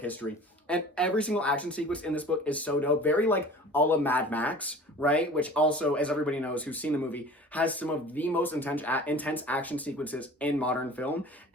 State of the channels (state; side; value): normal; both; correlation 0.43